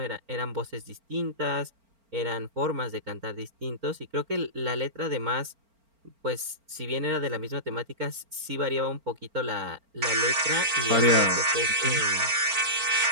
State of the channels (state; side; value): late; left; 4.4 ms